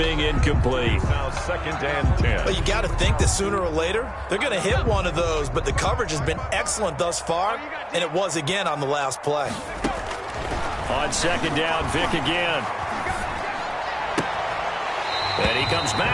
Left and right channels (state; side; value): identical; both; correlation 1.00